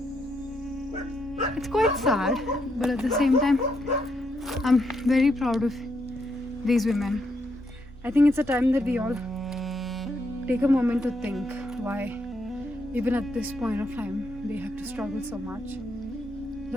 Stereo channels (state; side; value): normal; both; correlation 0.78